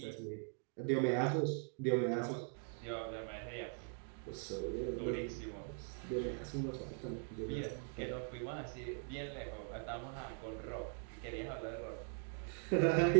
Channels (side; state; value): left; silent; 50 dB below the other